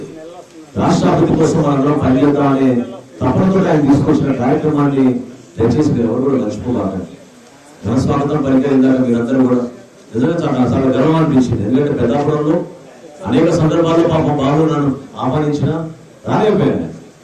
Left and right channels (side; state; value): both; identical; correlation 1.00